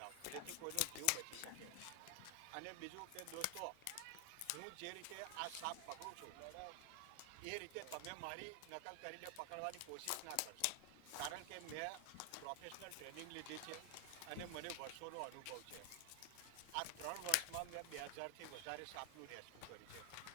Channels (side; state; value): both; different; correlation 0.00